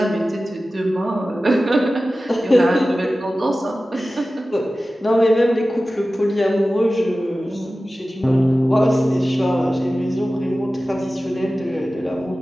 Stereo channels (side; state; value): both; normal; correlation 0.95